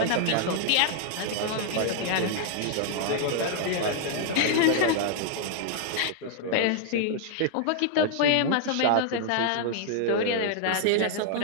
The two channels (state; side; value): different; both; correlation -0.01